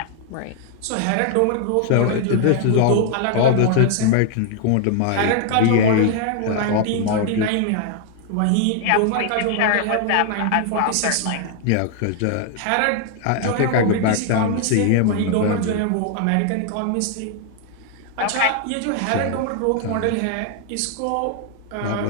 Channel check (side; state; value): both; different; correlation 0.00